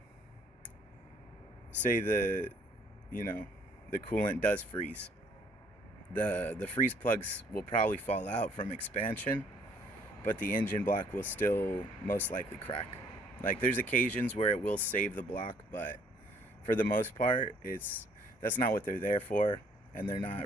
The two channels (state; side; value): normal; both; correlation 0.62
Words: say the coolant does freeze, the freeze plugs will probably fall out from expansion, but the engine block will still most likely crack. There's occasions where it will save the block, but for the most part that's not what they're there for, and they're